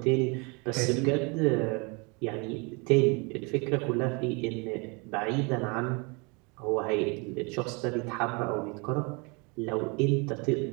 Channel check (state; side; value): quieter; left; 30.5 dB